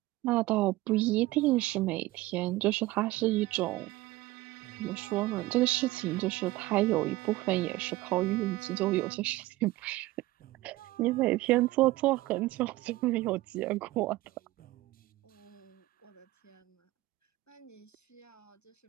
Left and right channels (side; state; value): left; quieter; 18.4 dB